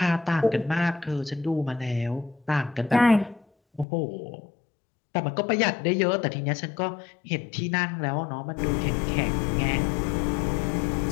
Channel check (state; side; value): drops out; right; at 3.9 s